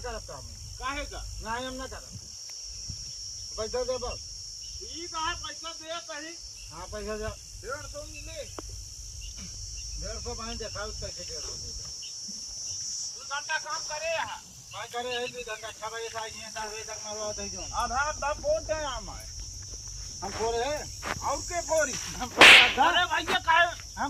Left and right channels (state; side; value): identical; both; correlation 1.00